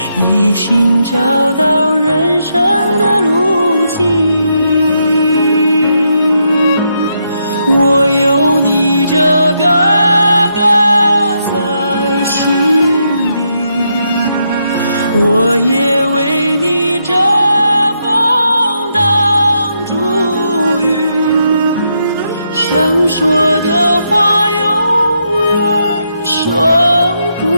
一心找到人生的路径。我有你这个哥在心里，我也为你遮风挡住雨，想说的话永远说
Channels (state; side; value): inverted; both; correlation -0.79